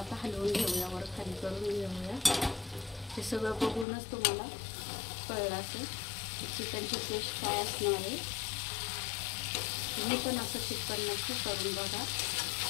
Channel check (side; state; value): right; drops out; at 3.9 s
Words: हलवून घेऊया, वर खाली करून घेऊया। हे सगळं बघूनच तुम्हाला कळलं असेल चिकनची टेस्ट काय असणार आहे। तुम्ही पण असं चिकन नक्की करून बघा